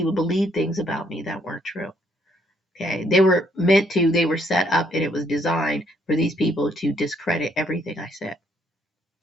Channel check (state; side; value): normal; both; correlation 0.69